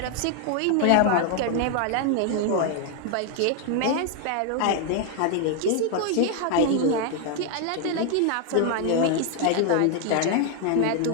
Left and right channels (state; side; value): different; both; correlation 0.00